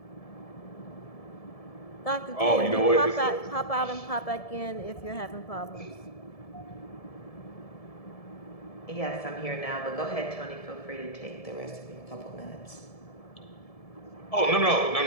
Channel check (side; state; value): right; late; 1.7 ms